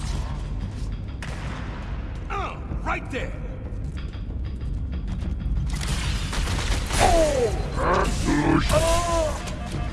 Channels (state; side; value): identical; both; correlation 1.00